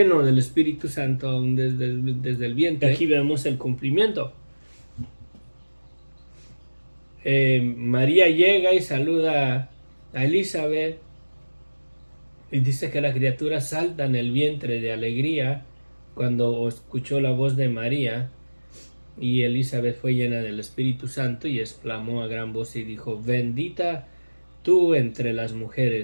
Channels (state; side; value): inverted; both; correlation -1.00